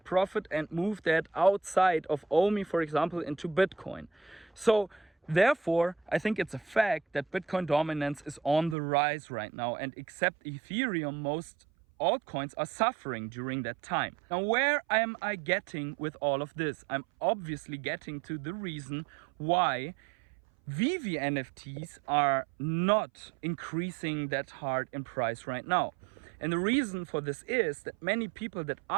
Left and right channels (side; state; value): left; drops out; at 8.8 s